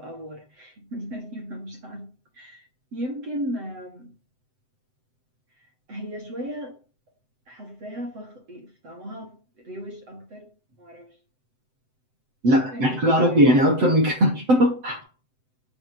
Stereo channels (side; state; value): left; late; 7.8 ms